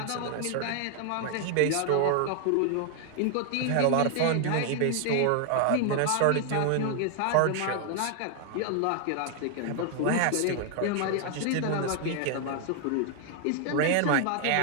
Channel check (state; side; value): different; both; correlation 0.00